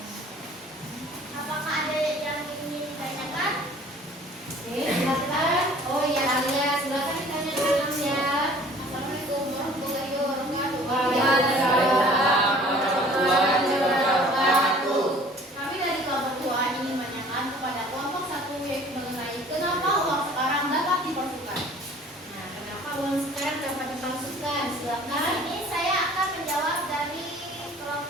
Apakah ada yang ingin ditanyakan? Oke, silakan. Oh ya Alia, silakan ditanya dulu ya. Assalamualaikum warahmatullahi wabarakatuh. Kami dari kelompok 2 ingin menanyakan kepada kelompok 1 yaitu mengenai kenapa uang sekarang dapat dipalsukan. Nah, kenapa uang sekarang dapat dipalsukan? Nah, Silakan. ini saya akan menjawab dari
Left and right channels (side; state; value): both; normal; correlation 0.51